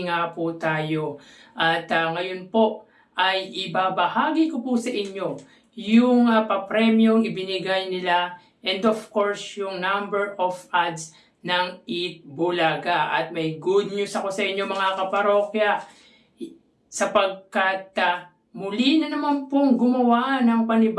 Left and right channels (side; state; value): both; identical; correlation 1.00